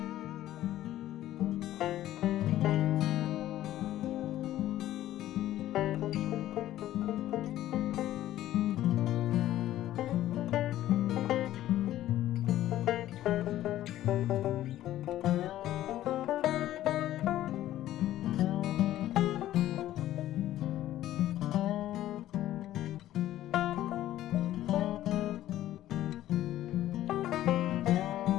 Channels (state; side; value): quieter; right; 13.7 dB